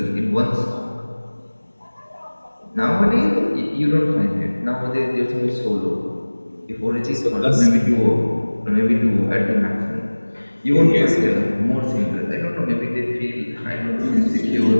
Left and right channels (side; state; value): both; inverted; correlation -1.00